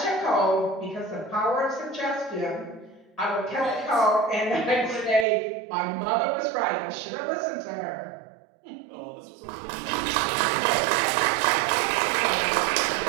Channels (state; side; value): drops out; left; at 5.2 s